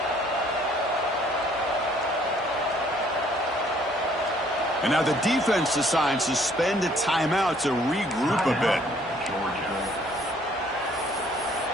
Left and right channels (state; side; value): normal; both; correlation 0.61